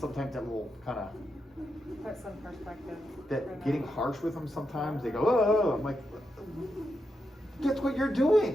that little kind of... Put some perspective. That getting harsh with them sometimes, they go, oh, I'm like, That's what you're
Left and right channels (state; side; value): normal; both; correlation 0.85